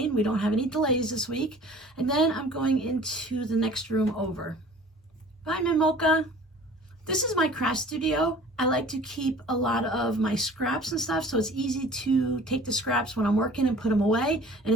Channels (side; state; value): both; normal; correlation 0.47